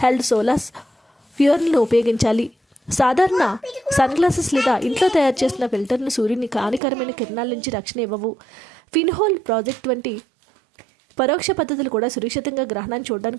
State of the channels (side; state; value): left; drops out; at 6.8 s